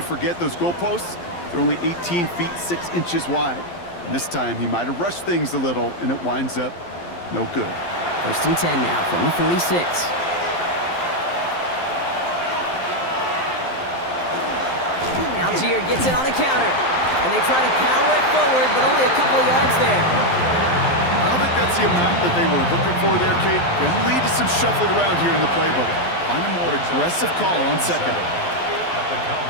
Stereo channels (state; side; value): late; right; 11 ms